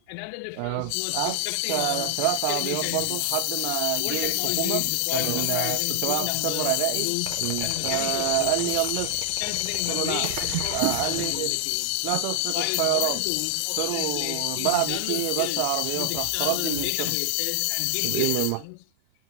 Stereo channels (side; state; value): both; different; correlation 0.00